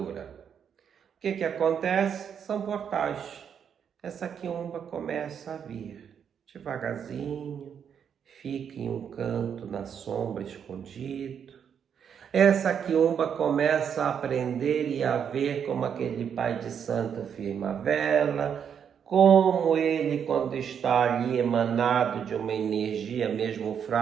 O que acontece? São portais. Essa quiumba começa a vir devagarzinho, fica em um canto na sombra escondido. Essa quiumba começa a aprender e a ver como aquele pai de santo firma a vela, como ele, quando está ali emanado de uma energia mesmo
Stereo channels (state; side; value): quieter; left; 7.8 dB